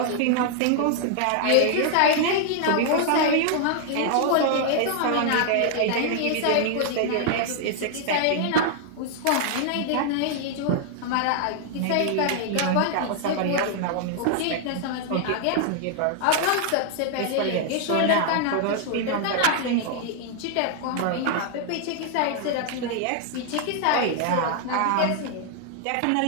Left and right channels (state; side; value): different; both; correlation 0.00